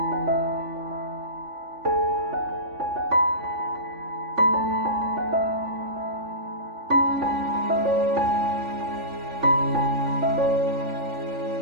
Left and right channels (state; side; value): late; left; 3.5 ms